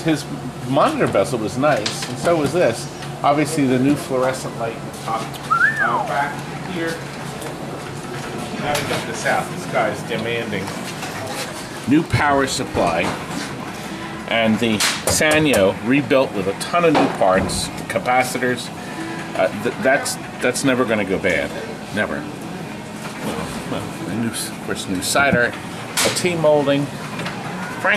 his monitor bezel was nice, and so was this. Obviously the new fluorescent light in the top. Back here. Now to get this out. This guy's demanding. New power supply. And the Sanyo rebuilt with a ton of new parts, capacitors. That's never going to go bad. Never. Well, of course, new cider, a T-molding.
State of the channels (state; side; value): identical; both; correlation 1.00